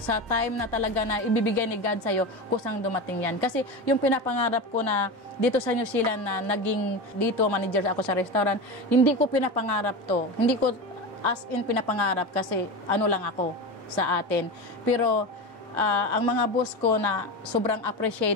time na talaga na ibibigay ni God sa'yo, kusang dumating yan. Kasi yung pinapangarap ko na dito sa New Zealand na naging dito manager ako sa restaurant, hindi ko pinapangarap to. Hindi ko as in pinapangarap kasi lang ako sa atin. Pero ang mga boss ko na sobrang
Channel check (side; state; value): both; normal; correlation 0.23